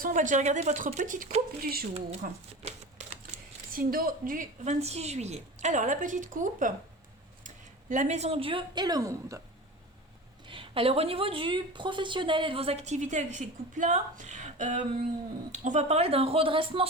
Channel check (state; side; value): normal; both; correlation 0.32